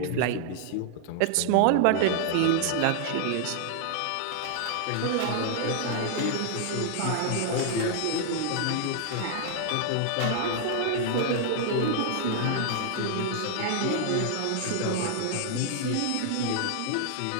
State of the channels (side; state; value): both; different; correlation -0.01